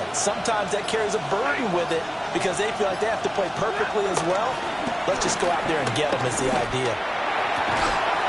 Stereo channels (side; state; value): both; identical; correlation 1.00